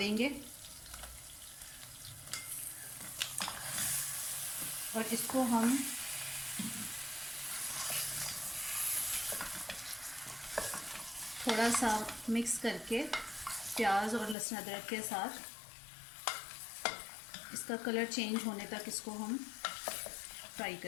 और इसको हम थोड़ा सा मिक्स करके प्याज और लहसुन अदरक के साथ इसका कलर चेंज होने तक इसको हम फ्राई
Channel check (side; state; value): right; drops out; at 14.4 s